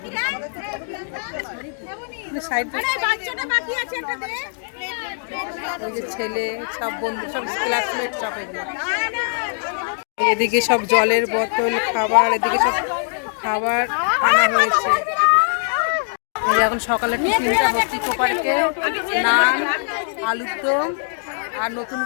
ছেলে সব বন্ধু, সব ক্লাসমেট, সব এদিকে সব জলের বোতল, খাবার, এদিকে সব খাবার আনা হয়েছে। এখন সকালে টিফিনটা হচ্ছে ইকো পার্কে, নান, আলুর দম আর নতুন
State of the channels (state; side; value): silent; right; digital silence